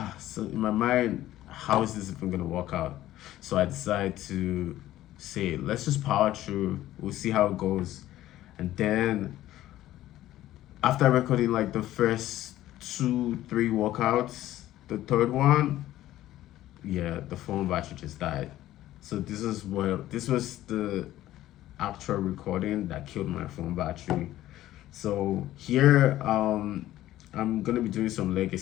So in my mind, how is this even gonna work out? So I decide to say, let's just power through. We'll see how it goes. And then after recording like the first two, three workouts, the third one, yeah, the phone battery just died. So this was the actual recording that killed my phone battery. So here, I'm gonna be doing some leg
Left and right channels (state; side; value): quieter; right; 14.3 dB